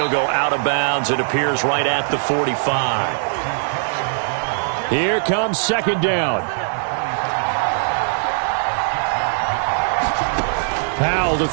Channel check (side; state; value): left; silent; digital silence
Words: go out of bounds. It appears right at the 45. Here comes 2nd down. Howell to